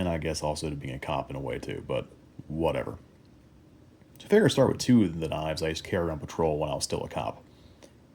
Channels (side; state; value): both; identical; correlation 1.00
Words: I guess also to being a cop in a way too, but whatever. So I figure I'd start with two of the knives I used to carry on patrol when I was still a cop.